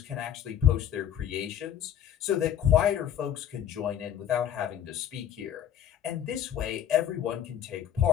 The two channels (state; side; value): quieter; right; 9.8 dB